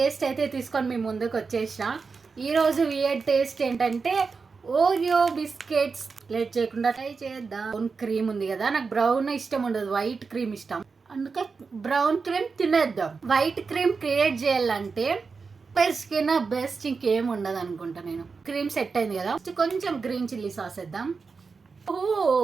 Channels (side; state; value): left; quieter; 4.8 dB